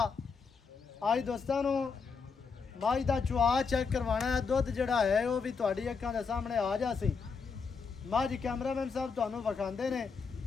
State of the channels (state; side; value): quieter; right; 5.3 dB